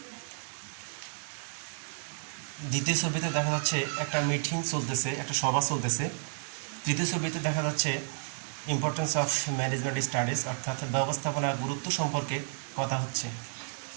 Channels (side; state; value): left; silent; digital silence